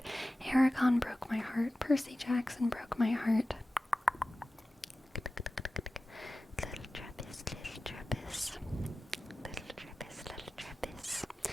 Aragon broke my heart. Percy Jackson broke my heart. Little Trappist, little Trappist. Little Trappist, little Trappist.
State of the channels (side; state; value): both; normal; correlation 0.95